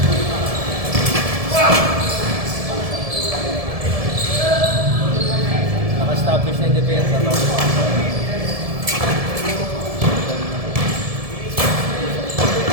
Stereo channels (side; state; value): left; late; 1.7 ms